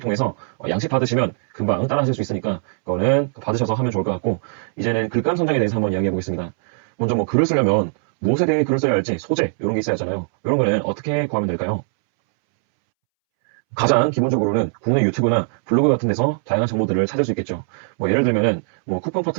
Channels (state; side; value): silent; left; 65 dB below the other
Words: 양식 받으시면 금방 따라 하실 수 있으니까 그거는 받으셔서 하면 좋을 것 같고, 이제는 글감 선정에 대해서 한번 이야기해 보겠습니다. 먼저 글을 쓰려면 무엇에 대해 글을 써야 할지 소재 이런 게 있어야 하잖아요. 이런 거는 어떻게 구하면 될까요? 가장 기본적으로는 국내 유튜브나 블로그 같은 데서 다양한 정보들을 찾을 수 있겠죠. 예를 들면은 쿠폰